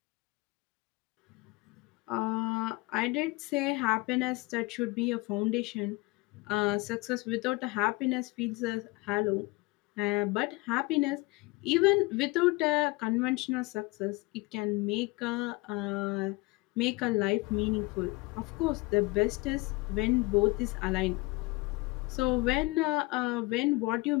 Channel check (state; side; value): quieter; right; 23.8 dB